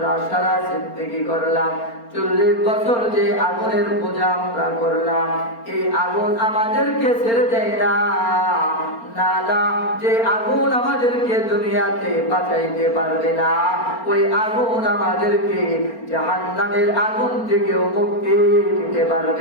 সারা জিন্দেগি করলাম, 40 বছর যে আগুনের পূজা আমরা করলাম, এই আগুন আমাদেরকে ছেড়ে দেয় না। না না, যে আগুন আমাদেরকে দুনিয়াতে বাঁচাইতে পারবে না, ওই আগুন আমাদেরকে জাহান্নামের আগুন থেকেও মুক্তি দিতে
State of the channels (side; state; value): right; late; 4.4 ms